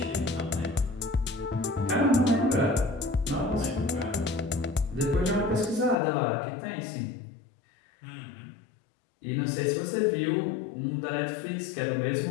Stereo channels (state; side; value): drops out; right; at 6.0 s